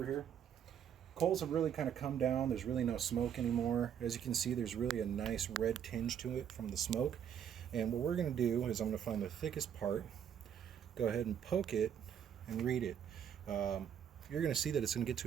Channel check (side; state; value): left; quieter; 8.9 dB